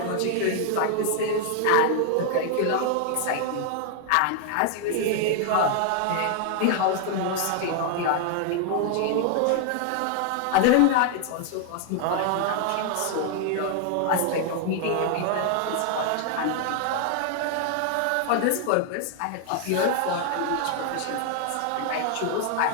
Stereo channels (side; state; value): both; different; correlation 0.00